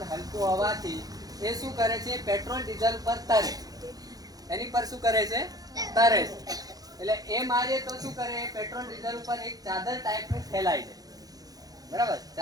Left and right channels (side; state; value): left; late; 0.18 ms